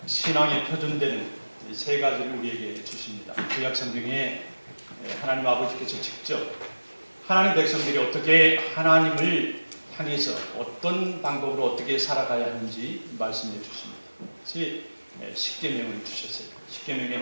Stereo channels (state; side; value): inverted; both; correlation -1.00